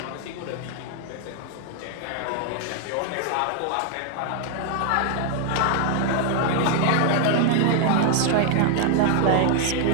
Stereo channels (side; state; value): both; different; correlation 0.00